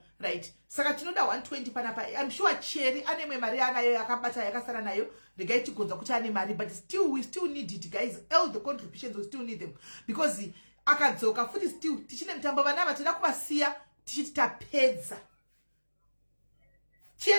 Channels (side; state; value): both; inverted; correlation -1.00